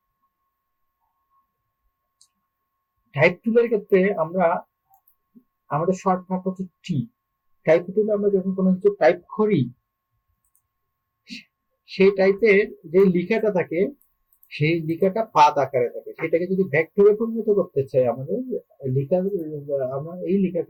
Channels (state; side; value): identical; both; correlation 1.00